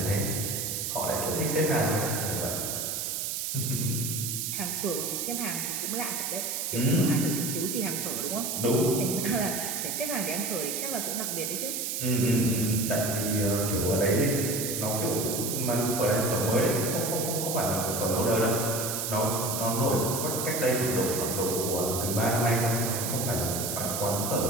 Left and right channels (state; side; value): noise; right; hiss, 2 dB below the sound